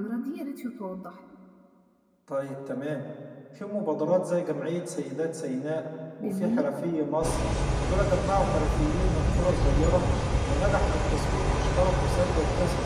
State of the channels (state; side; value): identical; both; correlation 1.00